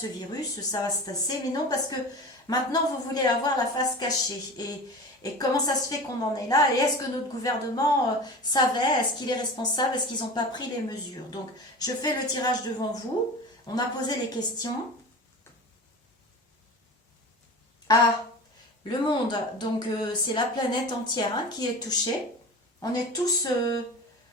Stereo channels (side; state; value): both; normal; correlation 0.33